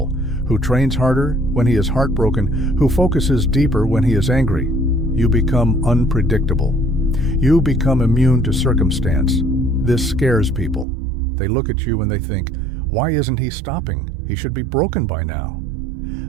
who trains harder when he is heartbroken, who focuses deeper when he is angry, you become unpredictable. You become immune to circumstance. This scares people. They look at you and they think, "Why isn't he stopping? He should be broken by now."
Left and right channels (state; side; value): drops out; left; at 10.9 s